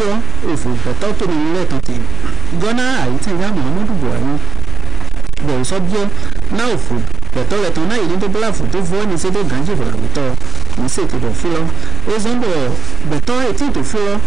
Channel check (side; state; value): left; quieter; 3.5 dB